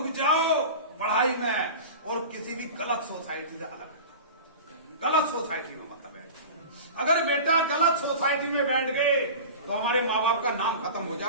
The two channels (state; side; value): inverted; both; correlation -0.33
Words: जाओ पढ़ाई में। और किसी भी गलत सोसाइटी से अलग, गलत सोसाइटी में मतलब बैठ। अगर बेटा गलत सोसाइटी में बैठ गए तो हमारे माँ बाप का नाम खत्म हो